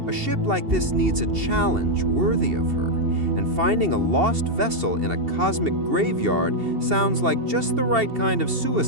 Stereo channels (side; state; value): left; late; 2.7 ms